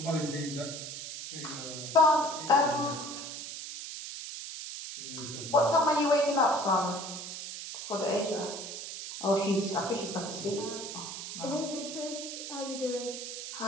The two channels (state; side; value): noise; right; hiss, 8 dB below the sound